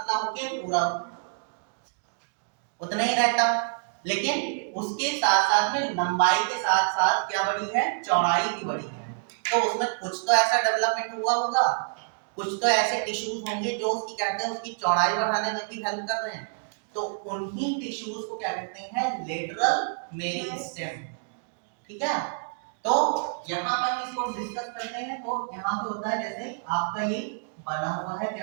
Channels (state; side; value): silent; left; digital silence